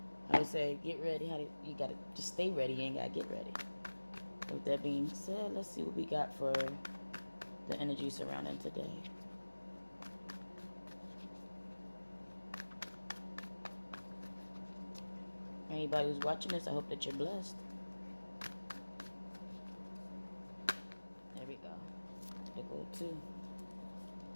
How they say, get ready. You gotta just stay ready. You ain't gotta get ready. With that being said, let's see what we got for the energy surrounding today. Anybody who's watching this, I hope that you're blessed. There we go. There go two.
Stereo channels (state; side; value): inverted; both; correlation -1.00